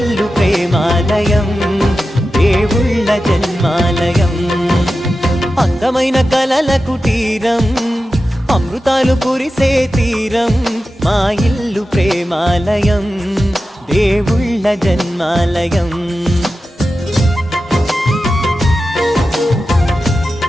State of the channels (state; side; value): normal; both; correlation 0.92